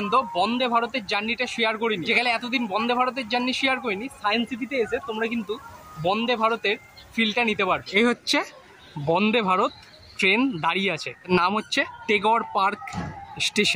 বন্দে ভারতের জার্নিটা শেয়ার করিনি। যেখানে এতদিন বন্দে ভারতের জার্নি শেয়ার করিনি, সায়েন্স সিটিতে এসে তোমরা কিন্তু বন্দে ভারতের ফিলটা নিতে পারবে। এই হচ্ছে বন্দে ভারত ট্রেন দাঁড়িয়ে আছে, নাম হচ্ছে টেগর পার্ক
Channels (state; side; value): identical; both; correlation 1.00